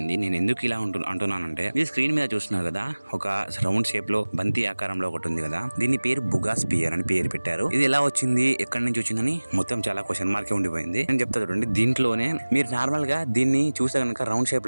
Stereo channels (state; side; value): inverted; both; correlation -1.00